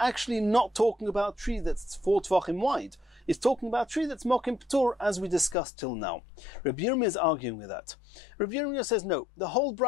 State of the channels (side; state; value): right; drops out; at 5.6 s